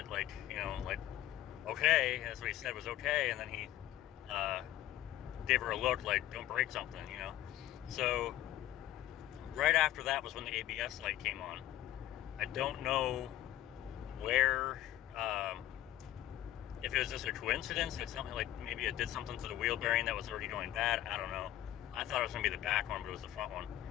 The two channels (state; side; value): quieter; right; 13.6 dB